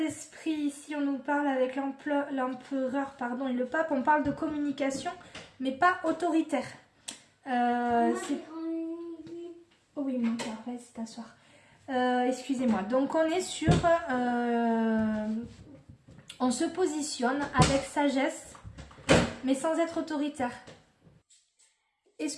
ici on nous parle avec l'empereur et le pape. On parle de communication, mais pas autoritaire. Oh oui, mon cœur, vas-y t'asseoir. Excusez-moi. Donc on est sur... on se positionne avec sagesse, mais sans être autoritaire.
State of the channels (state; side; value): identical; both; correlation 1.00